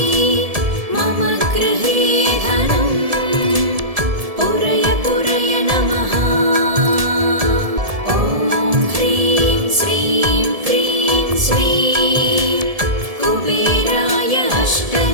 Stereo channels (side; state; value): left; late; 1.7 ms